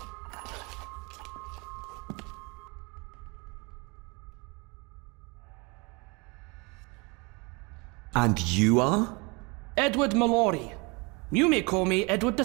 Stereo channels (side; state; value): left; quieter; 28.3 dB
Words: And you are? Edward Mallory. You may call me Edward